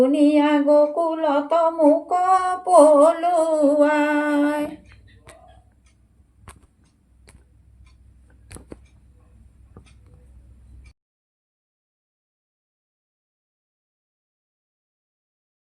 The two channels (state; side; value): identical; both; correlation 1.00